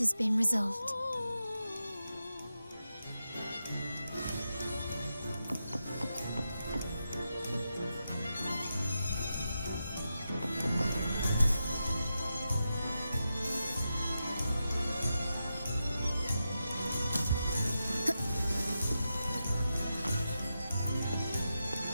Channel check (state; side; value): inverted; both; correlation -0.88